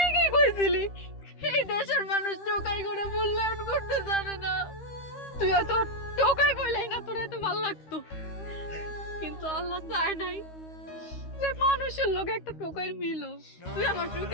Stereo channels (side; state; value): right; late; 13 ms